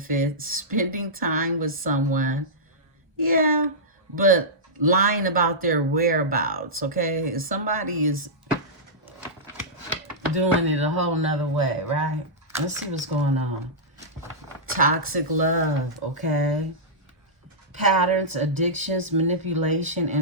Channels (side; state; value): both; normal; correlation -0.13